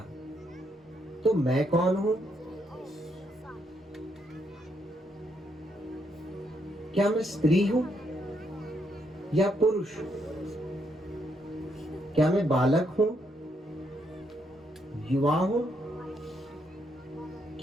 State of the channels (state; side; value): normal; both; correlation 0.76